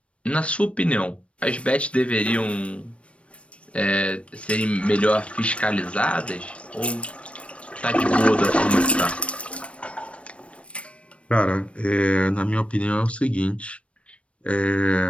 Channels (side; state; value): right; late; 0.061 ms